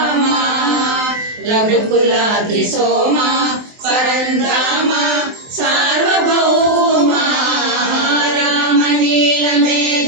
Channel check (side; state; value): left; late; 23 ms